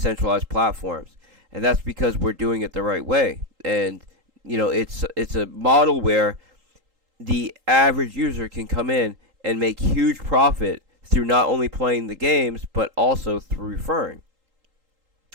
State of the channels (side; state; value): left; late; 3.8 ms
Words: platforms. And that's because we're doing it the right way. And, it's a model where the average user can come in and make huge profit through not only playing the games, but also through referring.